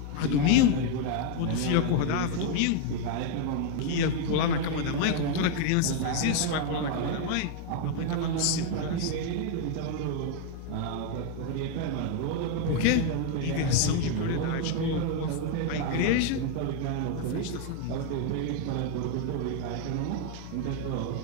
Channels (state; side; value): different; both; correlation 0.01